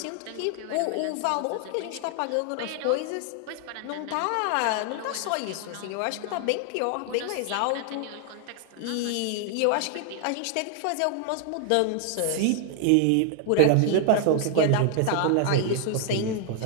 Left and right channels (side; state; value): both; different; correlation 0.00